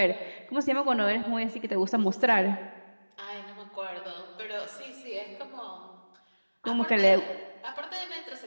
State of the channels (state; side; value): inverted; both; correlation -1.00